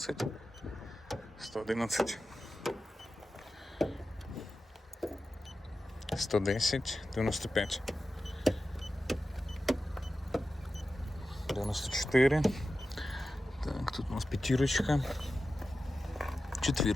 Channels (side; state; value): both; normal; correlation 0.93